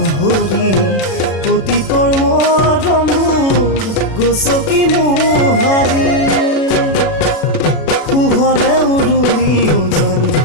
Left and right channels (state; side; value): late; right; 36 ms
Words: অতীতৰ মৰমবোৰ গছকি মোহাৰি শুভৰে উৰুলি ওজন